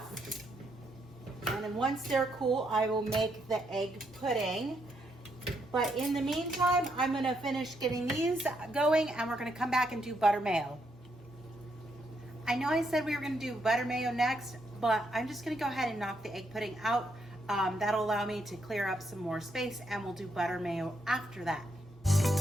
And then once they're cool, I will make the egg pudding. But in the meantime, I'm gonna finish getting these going and we're gonna come back and do butter mayo. I know I said we were gonna do butter mayo next, but I'm just gonna go ahead and knock the egg pudding out. That'll allow me to clear up some more space and we'll do butter mayo after that.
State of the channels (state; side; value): normal; both; correlation 0.77